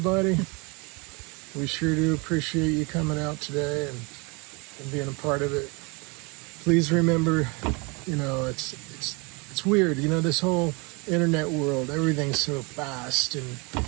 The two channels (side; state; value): left; quieter; 29.6 dB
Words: We sure do appreciate you coming out today and and being a part of it. Please remember, it's weird. This whole internet world, everything's so fast, and